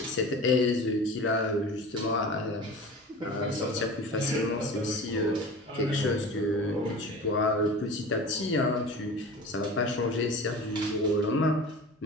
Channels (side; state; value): both; normal; correlation 0.36